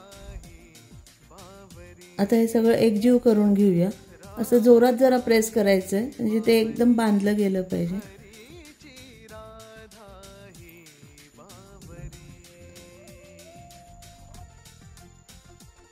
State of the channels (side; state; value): both; identical; correlation 1.00